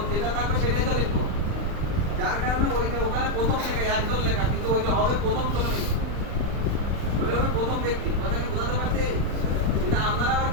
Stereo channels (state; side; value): late; left; 39 ms